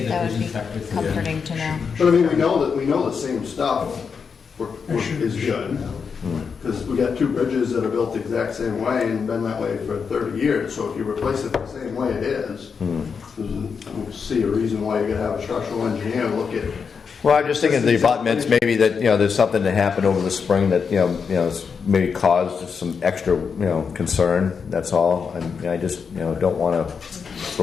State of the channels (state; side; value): quieter; right; 5.9 dB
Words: the that would vision be inspector- comforting to know. But I mean, we know the same stuff is good. Because we got 2 bridges that are built the exact same way and been that way for 30 years. So if you replace it the same way it is, I don't see a reason why you gotta have a structural engineer look at. Well, I'm just thinking the abutments, maybe that, you know, there's something that happened over the spring that, you know, maybe caused some extra, you know, concern, that's all. And I just, you know, don't want to